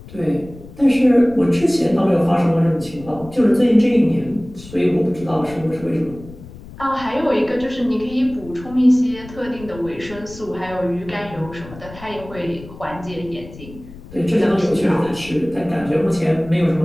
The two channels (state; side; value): noise; left; rumble, 17 dB below the sound